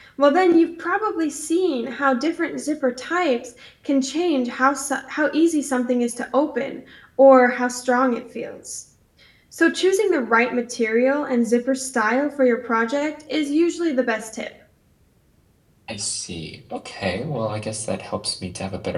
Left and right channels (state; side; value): identical; both; correlation 1.00